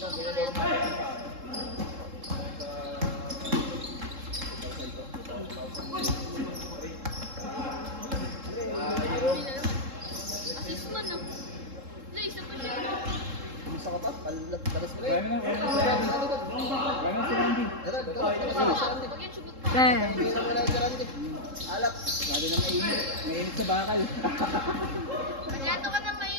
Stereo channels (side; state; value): left; late; 3.7 ms